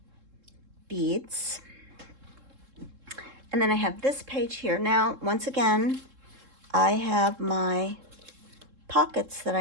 beads. And then I have this page here. Now, once again, I have my pockets that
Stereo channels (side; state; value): left; late; 3.7 ms